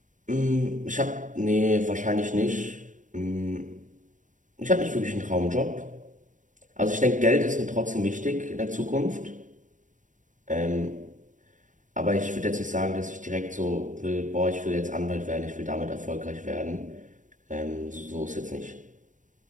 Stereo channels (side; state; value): left; late; 0.37 ms